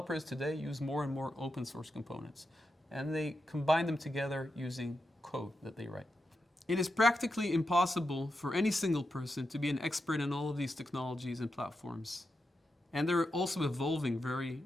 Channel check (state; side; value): normal; both; correlation 0.87